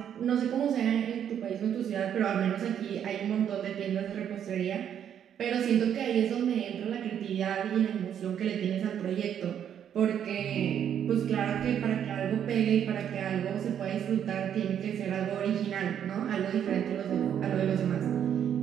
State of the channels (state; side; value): quieter; left; 9.2 dB